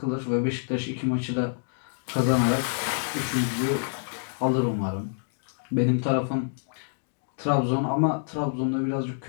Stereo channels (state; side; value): silent; right; digital silence